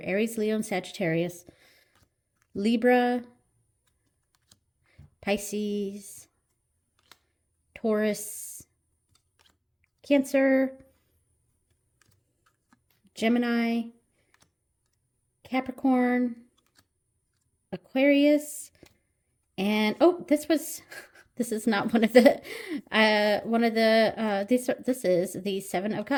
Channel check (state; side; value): identical; both; correlation 1.00